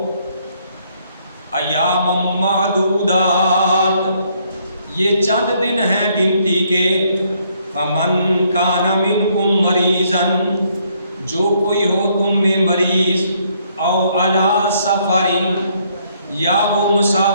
ایام معدودات، یہ چند دن ہیں گنتی کے. فمن کان منکم مریضا، جو کوئی ہو تم میں مریض، او علی سفر، یا وہ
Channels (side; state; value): both; inverted; correlation -0.69